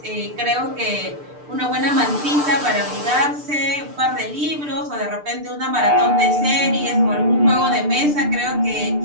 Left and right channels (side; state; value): left; late; 6.7 ms